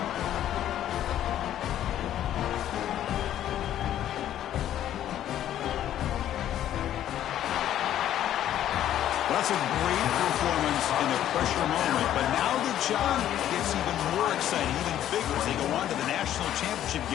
That's a great performance in the pressure moment, but now the job gets even more exciting, even bigger as they go on to the national championship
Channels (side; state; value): right; quieter; 11.6 dB